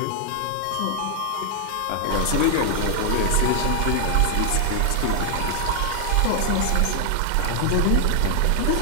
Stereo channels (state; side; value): different; both; correlation 0.00